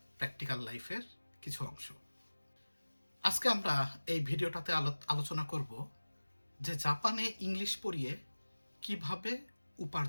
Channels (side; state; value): both; inverted; correlation -1.00